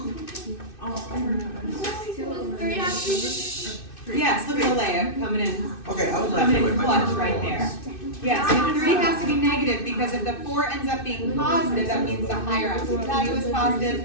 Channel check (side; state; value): right; late; 2.6 ms